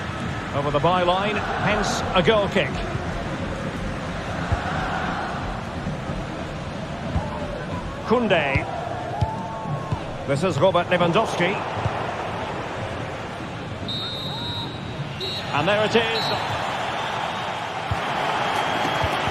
Over the byline, hence a goal kick. Koundé. This is Robert Lewandowski. And there it is.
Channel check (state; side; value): identical; both; correlation 1.00